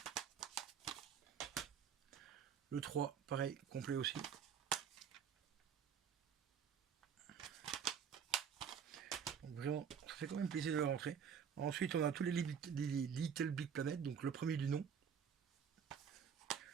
Le 3, pareil, complet aussi. Donc vraiment, ça fait quand même plaisir de le rentrer. Ensuite, on a tous les Little Big Planet, donc le premier du nom.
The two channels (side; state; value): left; quieter; 7.5 dB